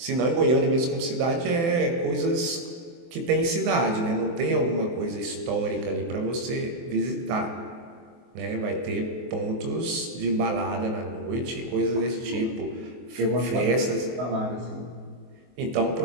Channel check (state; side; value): late; left; 24 ms